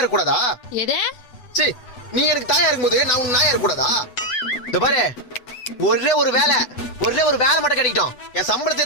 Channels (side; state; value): right; late; 8.0 ms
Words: இருக்க கூடாதா? எது? சீ, நீ எனக்கு தாயா இருக்கும் போது நான் உனக்கு நாயா இருக்க கூடாதா? இந்த பாரு, ஒரே ஒரு வேலை மட்டும் கிடைக்கட்டும். என்